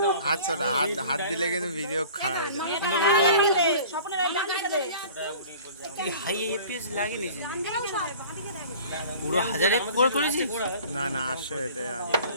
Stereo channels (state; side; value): inverted; both; correlation -0.45